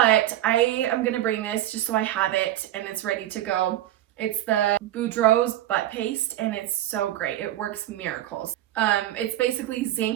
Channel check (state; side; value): quieter; left; 13.4 dB